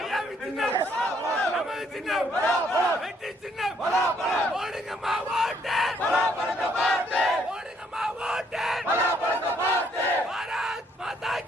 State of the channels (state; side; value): normal; both; correlation 0.68